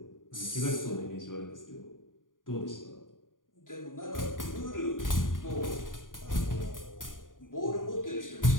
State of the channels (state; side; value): late; right; 0.89 ms